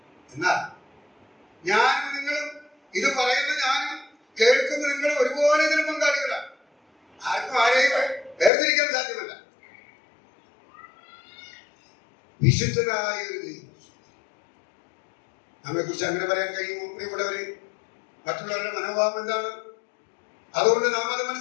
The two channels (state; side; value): drops out; right; at 8.5 s